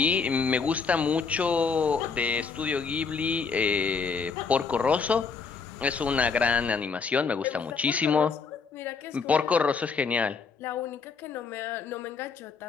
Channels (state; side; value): quieter; right; 5.2 dB